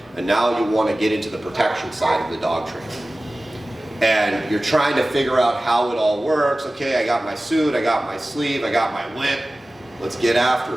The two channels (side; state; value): both; normal; correlation 0.97